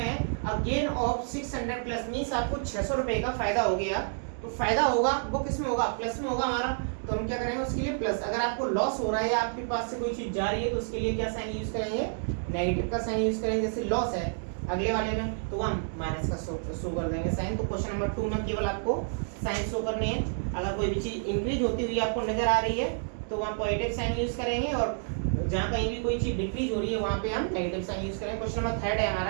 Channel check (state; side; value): silent; left; digital silence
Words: है अ गेन ऑफ 600 प्लस, मीन्स आपको 600 रुपए का फायदा हो गया। तो फायदा होगा वो किस में होगा, प्लस में होगा हमारा। तो हम क्या करेंगे उसके लिए प्लस। अगर आपको लॉस हो रहा है या आपके पास से कोई चीज जा रही है तो उसके लिए क्या साइन यूज करेंगे, नेगेटिव का साइन यूज करेंगे। जैसे लॉस है अगले वाले में तो हम माइनस का शो कर देंगे साइन। तो क्वेश्चन नंबर 2 में केवल आपको साइन शो करने हैं। अगर कोई भी चीज इंक्रीज होती हुई आपको नजर आ रही है तो वहाँ पॉजिटिव साइन यूज करेंगे, और जहाँ कहीं भी कोई चीज डिक्रीज हो रही है वहाँ पे हम नेगेटिव साइन यूज करेंगे। क्वेश्चन नंबर 3 है